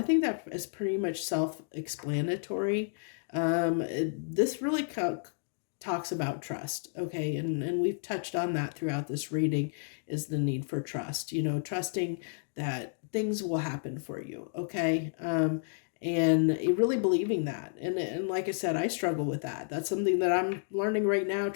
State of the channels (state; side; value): silent; right; digital silence